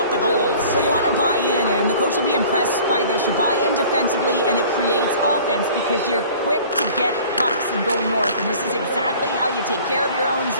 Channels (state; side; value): inverted; both; correlation -0.47